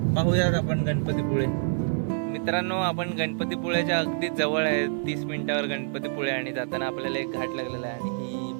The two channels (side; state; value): left; silent; 60 dB below the other